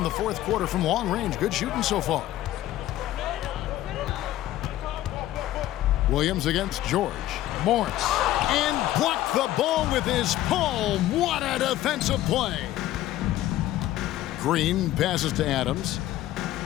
the fourth quarter from long range. Good shooting so far. Williams against George. Morris. And blocked the ball with his palm. What a defensive play. Green passes to Adams.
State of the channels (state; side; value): quieter; right; 14.3 dB